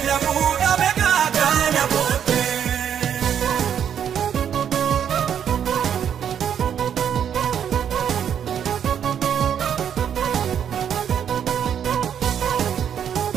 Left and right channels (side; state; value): left; quieter; 8.7 dB